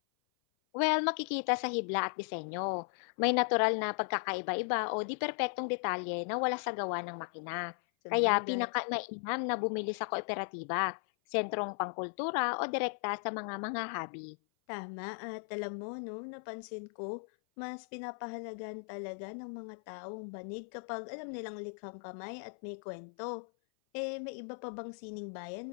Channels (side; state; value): right; silent; 54 dB below the other